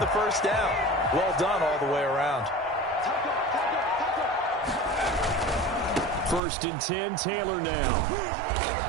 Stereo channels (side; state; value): left; drops out; at 6.4 s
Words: first down. Well done all the way around. 1st and 10, Taylor now.